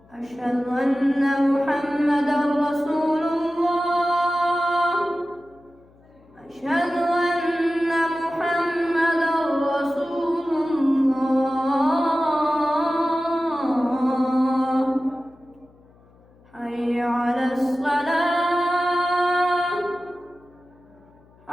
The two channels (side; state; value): left; noise; hum, 29 dB below the sound